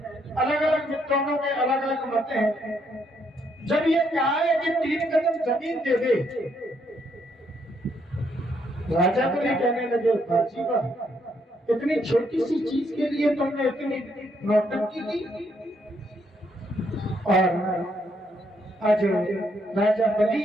अलग विद्वानों में अलग अलग मत हैं। जब ये कहा है कि 3 कदम जमीन दे दे, राजा बलि कहने लगे बाजी वाह, इतनी छोटी सी चीज के लिए तुमने इतनी नौटंकी की। और आज राजा बलि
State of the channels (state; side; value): normal; both; correlation 0.73